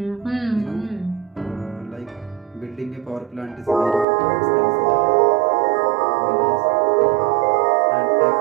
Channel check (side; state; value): left; drops out; at 4.0 s